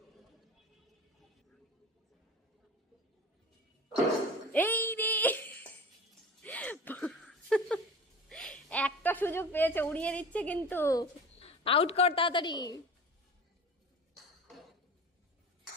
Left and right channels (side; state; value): both; normal; correlation 0.36